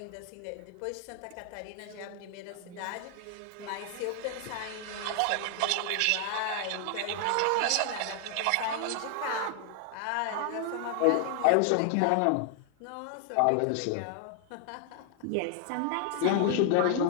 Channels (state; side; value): different; both; correlation 0.00